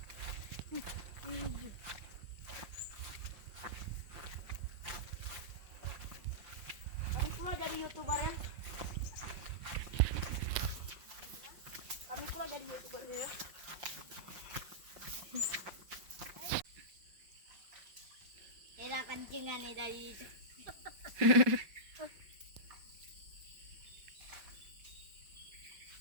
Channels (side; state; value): left; late; 5.3 ms